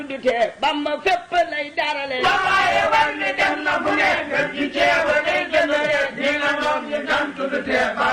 du tee Bamba fépp lay darale waaye wal mi dem na fu ne ngeen ji jeebo day gandile ñi nangoog ni gantu du tee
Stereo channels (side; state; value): both; identical; correlation 1.00